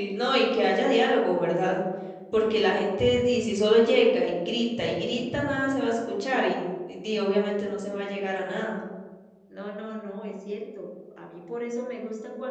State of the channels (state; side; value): identical; both; correlation 1.00